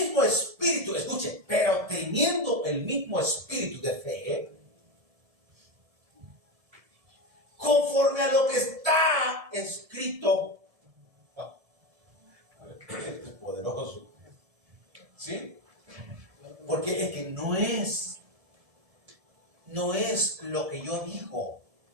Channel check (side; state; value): left; late; 1.7 ms